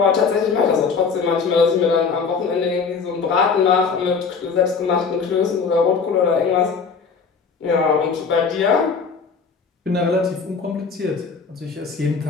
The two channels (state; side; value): quieter; right; 5.3 dB